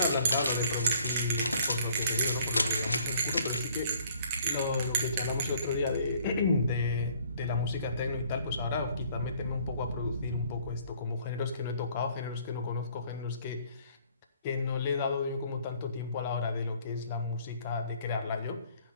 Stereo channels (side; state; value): both; inverted; correlation -0.58